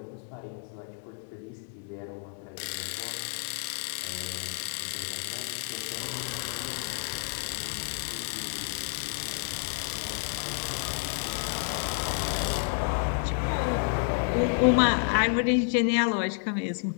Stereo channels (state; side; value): silent; right; 58 dB below the other